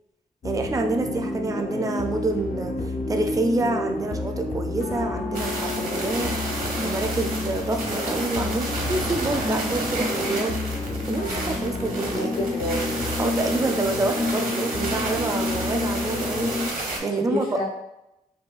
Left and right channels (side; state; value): both; normal; correlation 0.66